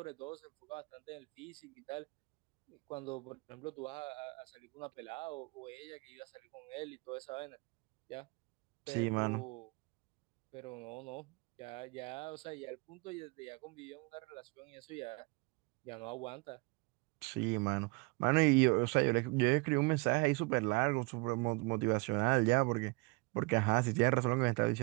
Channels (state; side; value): quieter; left; 27.9 dB